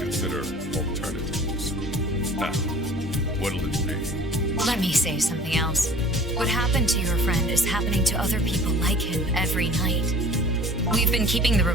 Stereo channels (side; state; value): both; normal; correlation 0.48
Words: alternatives. Now, what'll it be? Let me say something else. What happened to your friend is happening to other people like him every night. We've been keeping the